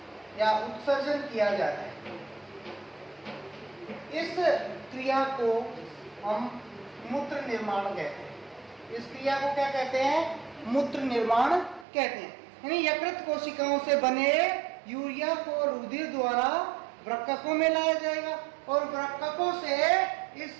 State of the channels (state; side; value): drops out; left; at 11.9 s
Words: या उत्सर्जन किया जाता है। इस क्रिया को हम मूत्र निर्माण कहते हैं। इस क्रिया को क्या कहते हैं? मूत्र निर्माण कहते हैं। यानी यकृत कोशिकाओं से बने यूरिया को रुधिर द्वारा वृक्कों में लाया जाएगा और वृक्कों से इस